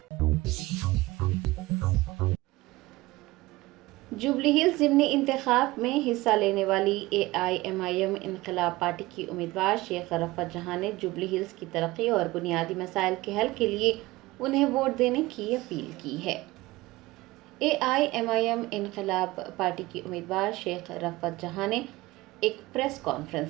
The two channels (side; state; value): left; quieter; 19.9 dB